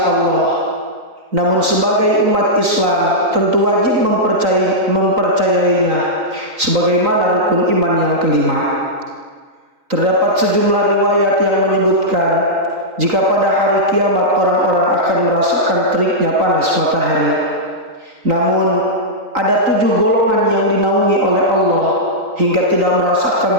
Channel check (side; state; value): left; late; 3.9 ms